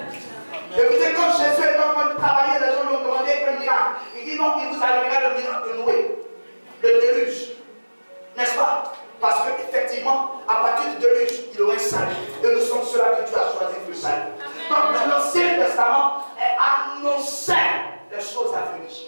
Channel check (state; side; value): inverted; both; correlation -1.00